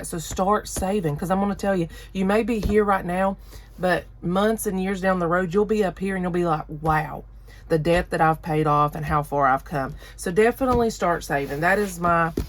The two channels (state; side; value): identical; both; correlation 1.00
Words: So start saving, because I'm going to tell you, you may be here right now, but months and years down the road, you'll be up here and you'll be like, wow, the debt that I've paid off and how far I've come. So definitely start saving. That is my